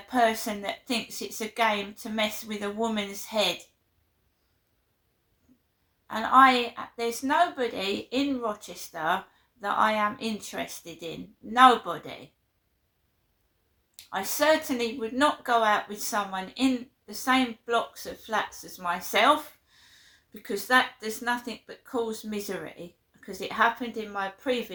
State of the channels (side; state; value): both; identical; correlation 1.00